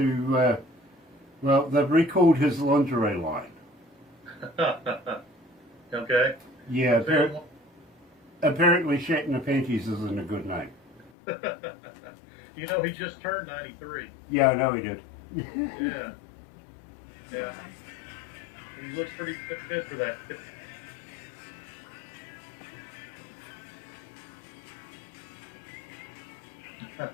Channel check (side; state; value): right; drops out; at 11.1 s